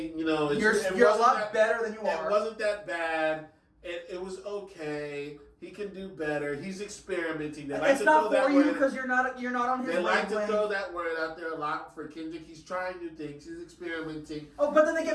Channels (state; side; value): identical; both; correlation 1.00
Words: you're a lot better than you are. It wasn't that bad. It was okay. He can do better. He's experimenting. It's not for you because you're not on his. They like to throw that word out there a lot for Kendrick. He's trying new things. He's experimenting. Oh, but then they